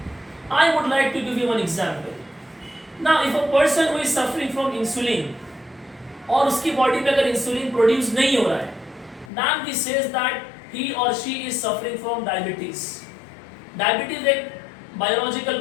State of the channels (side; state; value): right; drops out; at 9.3 s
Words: I would like to give you one example. Now if a person who is suffering from insulin और उसकी बॉडी में अगर इंसुलिन प्रोड्यूस नहीं हो रहा है, then we says that he or she is suffering from diabetes. Diabetes एक